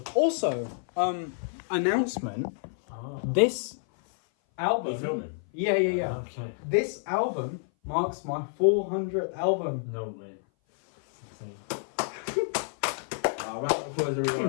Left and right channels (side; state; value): right; silent; 57 dB below the other